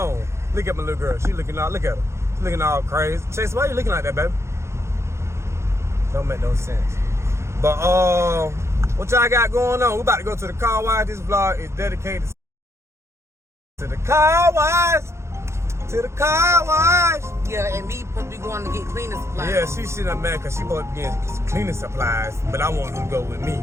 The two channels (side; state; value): left; late; 0.13 ms